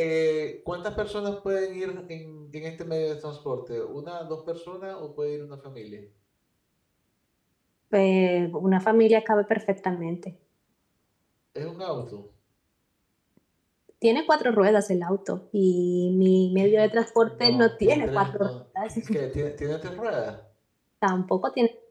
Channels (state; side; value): identical; both; correlation 1.00